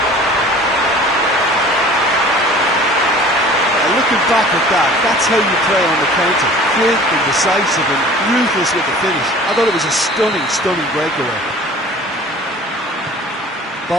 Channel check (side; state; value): both; normal; correlation 0.46